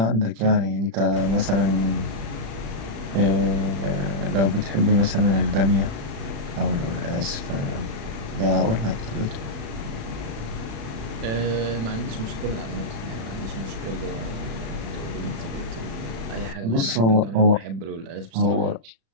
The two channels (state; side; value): late; left; 36 ms